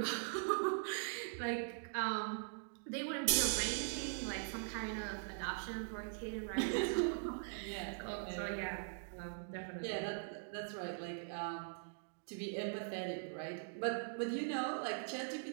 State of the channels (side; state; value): left; silent; digital silence